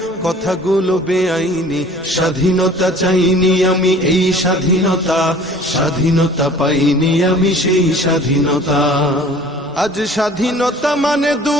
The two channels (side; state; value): both; normal; correlation 0.48